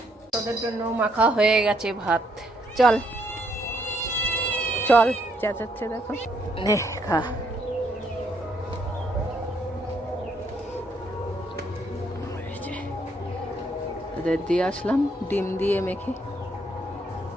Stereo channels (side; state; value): both; normal; correlation 0.72